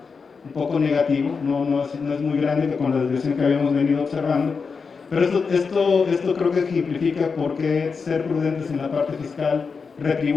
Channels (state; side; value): quieter; right; 5.2 dB